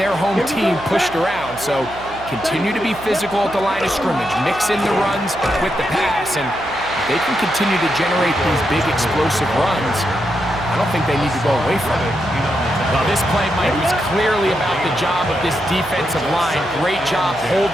home team pushed around. So continue to be physical at the line of scrimmage. Mix in the runs with the pass. And if they can continue to generate these big explosive runs, I don't think they need to go away from it. Well, this play, Mike, was clearly about the job of this defensive line. Great job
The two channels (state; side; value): noise; right; hum, 17 dB below the sound